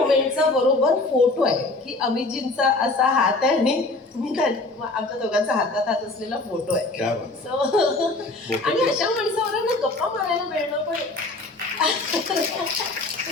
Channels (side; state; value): right; quieter; 3.1 dB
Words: बरोबर फोटो आहे की अमितजींचा असा हात आहे आणि मी आमच्या दोघांचा हातात हात असलेला फोटो आहे. आणि अशा माणसावर ना गप्पा मारायला मिळणं पण